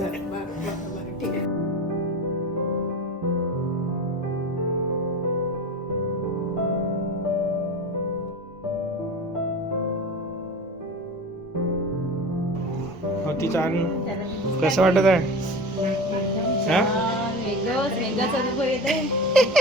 तिचा कसं वाटत आहे? वेगळाच अनुभव येते.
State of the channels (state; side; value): normal; both; correlation 0.31